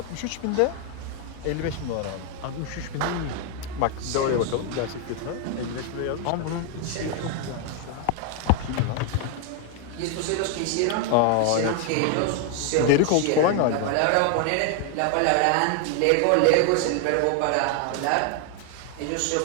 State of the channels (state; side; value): different; both; correlation 0.01